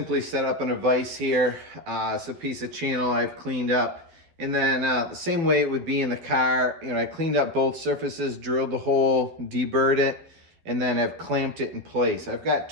set up in a vise here. It's a piece of channel I've cleaned up. And then the same way it would be in the car, you know, I cleaned up both surfaces, drilled the hole, deburred it, and then I've clamped it in place. I've got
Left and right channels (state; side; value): late; left; 12 ms